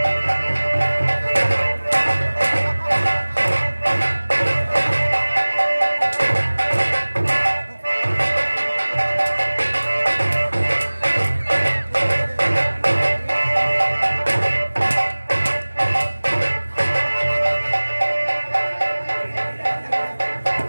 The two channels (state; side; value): inverted; both; correlation -1.00